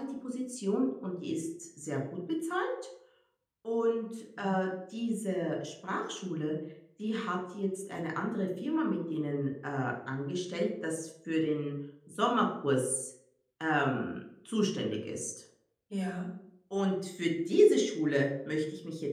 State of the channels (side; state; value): both; identical; correlation 1.00